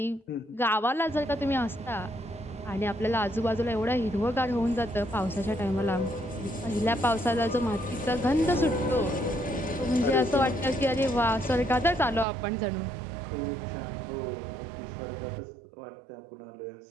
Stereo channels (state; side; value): drops out; left; at 12.2 s